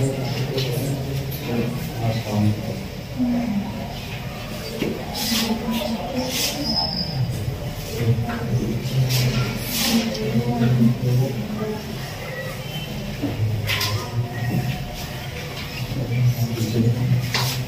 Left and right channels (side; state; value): both; identical; correlation 1.00